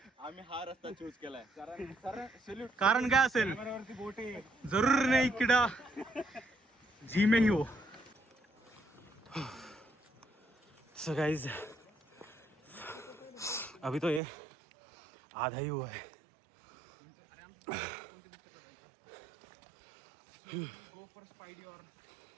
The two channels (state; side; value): drops out; left; at 14.2 s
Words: आम्ही हा रस्ता चूज केलाय. कारण काय असेल जरूर नाही किडा जी में ही हो. सो गाइस अभी तो ये आधा ही हुआ है.